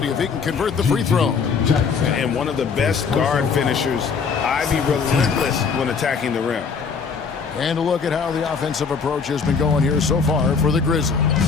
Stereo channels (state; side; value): quieter; right; 5.6 dB